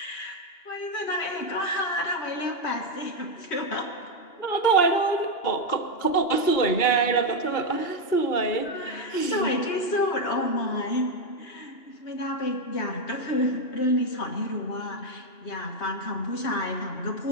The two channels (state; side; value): late; right; 2.9 ms